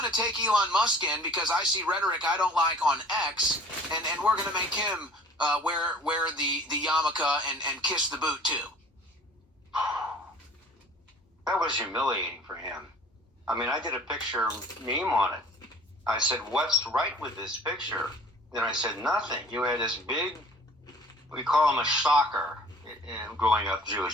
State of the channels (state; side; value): normal; both; correlation 0.49